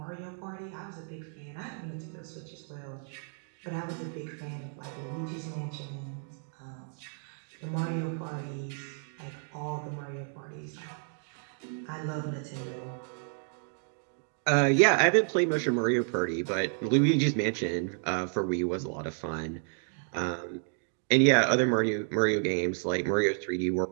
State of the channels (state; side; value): silent; left; 57 dB below the other